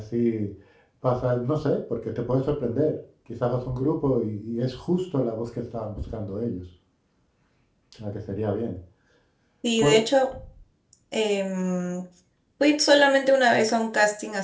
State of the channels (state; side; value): identical; both; correlation 1.00